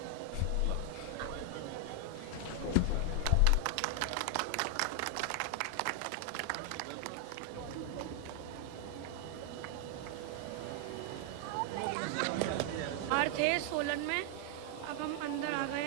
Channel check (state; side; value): different; both; correlation 0.00